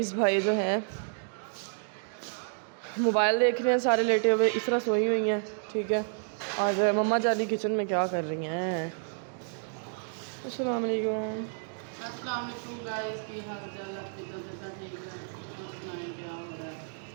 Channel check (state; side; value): silent; left; 58 dB below the other